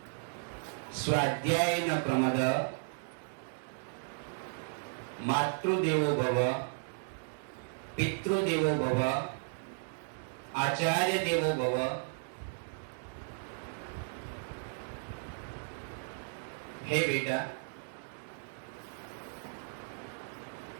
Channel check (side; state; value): left; silent; 55 dB below the other